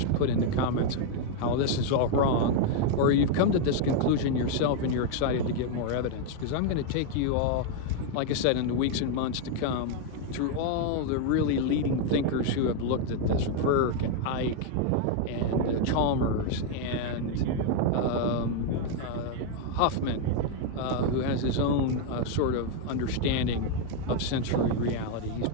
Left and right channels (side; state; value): both; different; correlation 0.00